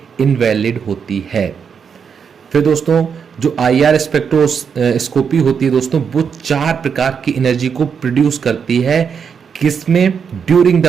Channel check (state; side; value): quieter; left; 6.7 dB